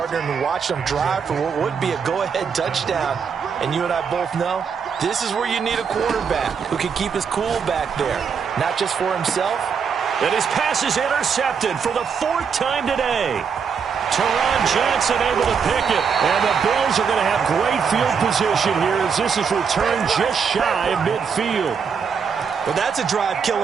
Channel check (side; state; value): left; quieter; 6.4 dB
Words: and watch them drive for what would be a go-ahead touchdown. And you and I both know this is where you need a quarterback who can keep his cool back there, not just for himself. And his pass is intercepted for the 4th time today. Teron Johnson able to pick it. And the Bills are going to have great field position here as this is returned just shy of midfield. Well, that's a drive